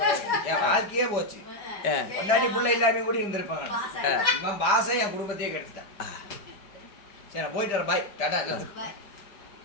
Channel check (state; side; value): late; right; 5.0 ms